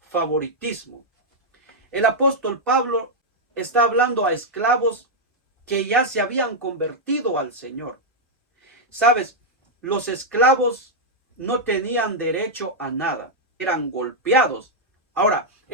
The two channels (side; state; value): both; normal; correlation -0.03